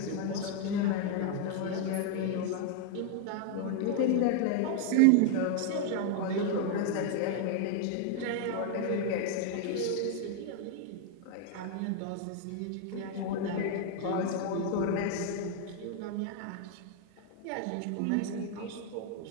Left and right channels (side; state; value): both; different; correlation 0.00